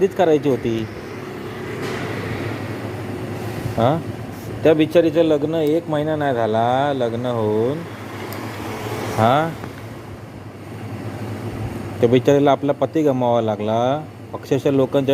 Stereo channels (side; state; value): both; identical; correlation 1.00